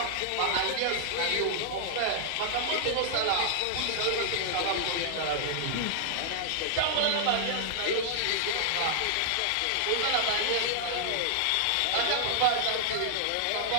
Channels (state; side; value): different; both; correlation -0.01